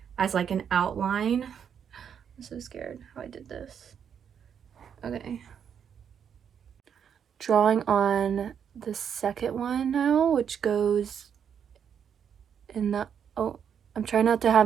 as like an outline. I'm so scared how I did this. Okay. Drawing on the second one now, which goes in the, oh, I'm trying not to have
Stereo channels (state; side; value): quieter; left; 7.9 dB